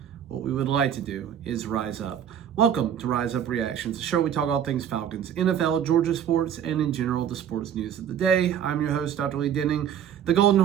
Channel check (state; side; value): quieter; left; 9.2 dB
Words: what we would like to do is rise up. Welcome to Rise Up Reactions, a show where we talk all things Falcons, NFL, Georgia sports, and in general, the sports news of the day. I'm your host, Dr. Lee Denning, the Golden